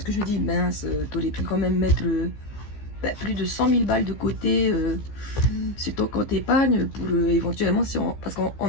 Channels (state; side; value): late; right; 15 ms